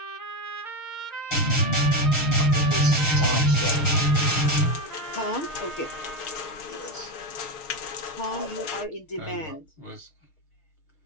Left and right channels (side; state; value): right; late; 6.5 ms